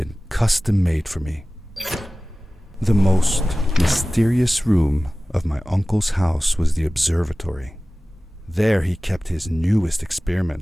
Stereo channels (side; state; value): both; normal; correlation 0.97